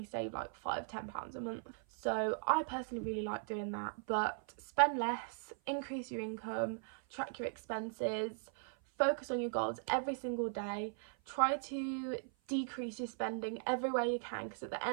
save like £5-10 a month. So I personally really like doing that. But spend less, increase your income, track your expenses, focus on your goals every single day. Try to decrease your spending everywhere you can, because at the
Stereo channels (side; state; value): left; silent; 52 dB below the other